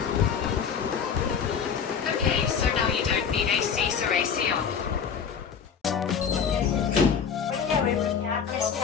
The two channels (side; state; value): right; quieter; 6.9 dB